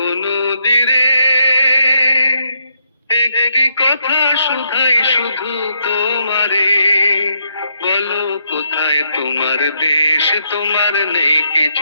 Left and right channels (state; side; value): inverted; both; correlation -0.78